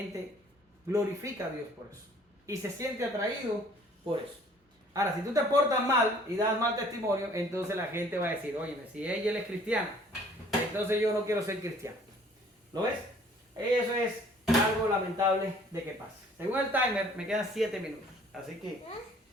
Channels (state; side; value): normal; both; correlation 0.55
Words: glorifica a Dios por eso y se siente atraído por eso. Ahora, si tú te portas mal y das mal testimonio, entonces la gente va a decir, oye, si ella es cristiana, entonces yo no quiero ser cristiano. ¿Lo ves? Eso es algo lamentable de que pase. Según el timer, me quedan 7 minutos. Así que